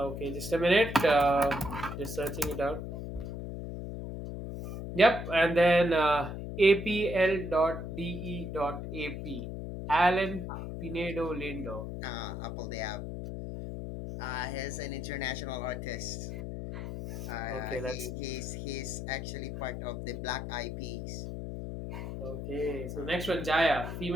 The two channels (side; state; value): left; noise; hum, 6 dB below the sound